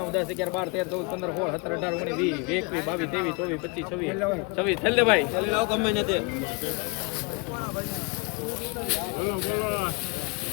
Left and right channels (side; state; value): right; quieter; 29.3 dB